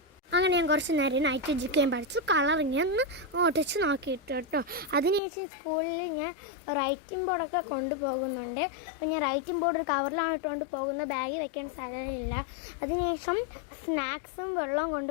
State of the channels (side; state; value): right; drops out; at 5.2 s